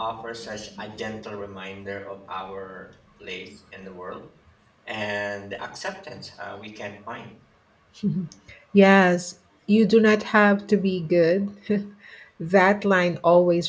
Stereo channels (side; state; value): both; identical; correlation 1.00